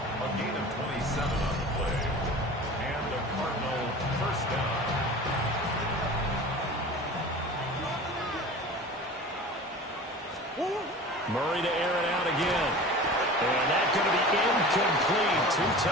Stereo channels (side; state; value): both; normal; correlation 0.37